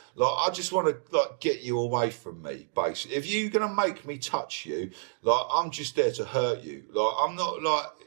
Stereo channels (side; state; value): left; silent; digital silence